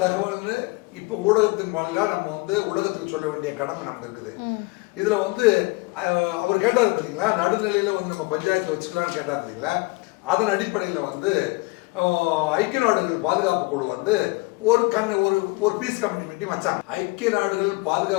தகவல்னு இப்போ ஊடகத்தின் வாயிலாக நம்ம வந்து உலகத்துக்கு சொல்ல வேண்டிய கடமை நமக்கு இருக்குது. இதில் வந்து அவர் கேட்டார் பார்த்தீங்களா, நடுநிலையில் வந்து நம்ம பஞ்சாயத்து வச்சுக்கலான்னு கேட்டார் பார்த்தீங்களா. அதன் அடிப்படையில் வந்து ஐக்கிய நாடுகள் பாதுகாப்பு குழு வந்து ஒரு பீஸ் கமிட்டி மீட்டிங் வச்சாங்க. ஐக்கிய நாடுகள்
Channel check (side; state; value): right; quieter; 25.0 dB